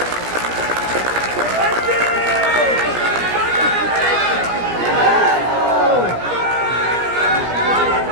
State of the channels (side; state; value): left; late; 17 ms